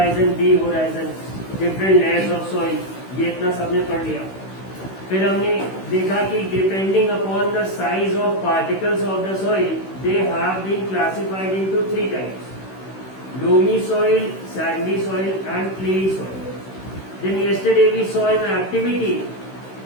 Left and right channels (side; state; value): right; late; 16 ms